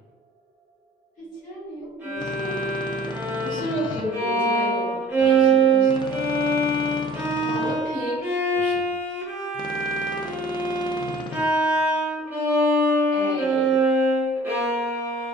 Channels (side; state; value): both; normal; correlation 0.48